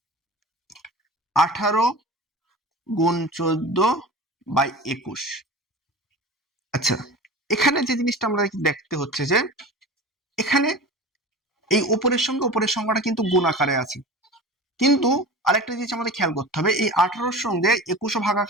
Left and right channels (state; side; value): normal; both; correlation 0.34